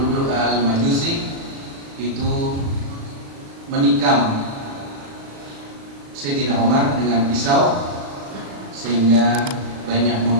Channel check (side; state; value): left; late; 36 ms